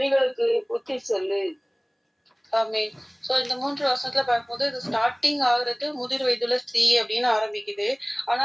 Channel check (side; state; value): both; identical; correlation 1.00